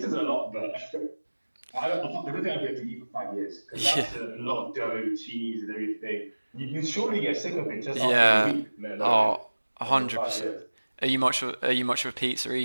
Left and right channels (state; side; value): inverted; both; correlation -1.00